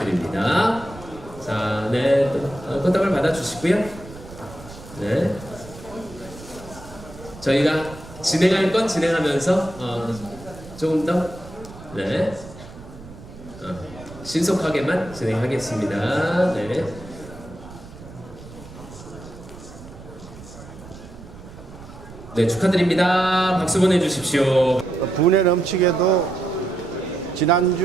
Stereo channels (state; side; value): noise; right; rumble, 17 dB below the sound